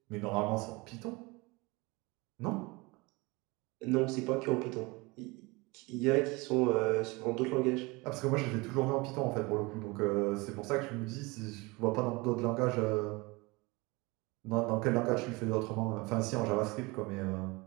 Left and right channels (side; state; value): left; quieter; 24.9 dB